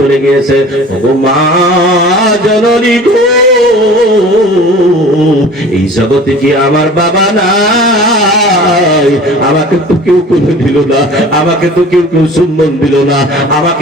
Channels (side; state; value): both; normal; correlation 0.43